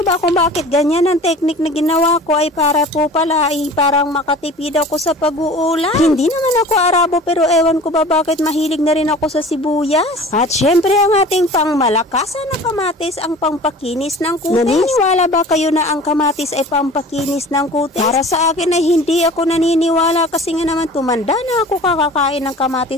ba kung bakit ganyan ang technique na ginawa ko ay para po pala ay parang makatipid ako sa pag-uulam. Hindi naman ako Arabo pero ewan ko ba bakit mahilig na rin ako sa sibuyas. At syempre ang ating pangmalakasan na kamatis ang pampakinis ng kutis. Naniniwala ba kayo na ang kamatis ay pampakinis ng kutis? Para sa akin ay hindi ako naniniwala kasi nga naman tumanda na ako kakakain ng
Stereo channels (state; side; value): normal; both; correlation 0.42